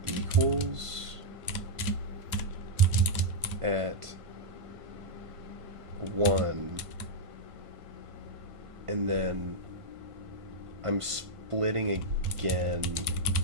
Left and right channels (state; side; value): late; left; 1.5 ms